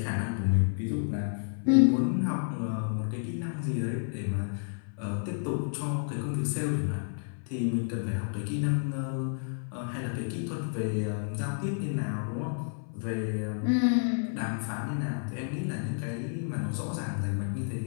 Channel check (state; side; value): silent; right; 57 dB below the other